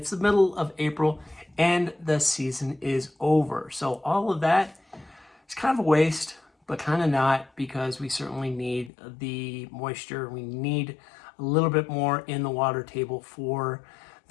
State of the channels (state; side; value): drops out; right; at 8.9 s